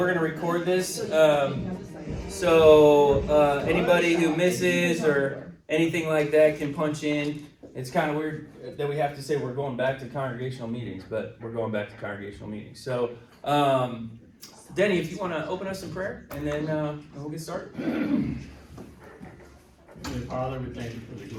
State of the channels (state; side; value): identical; both; correlation 1.00